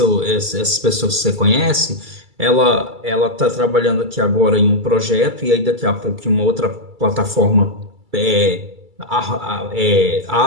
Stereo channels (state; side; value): late; left; 2.3 ms